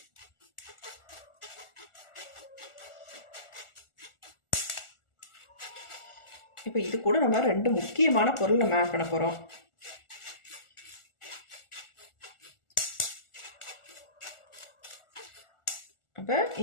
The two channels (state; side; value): late; right; 1.4 ms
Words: இப்போ இது கூட நம்ம 2 முக்கியமான பொருள் நம்ம ஆட் பண்ண போகிறோம். அப்போ